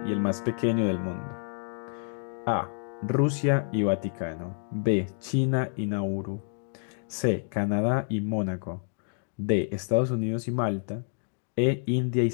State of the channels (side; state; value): right; silent; digital silence